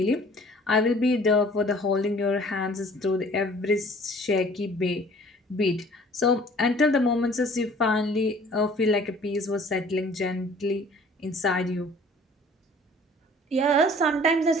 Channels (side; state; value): both; normal; correlation 0.52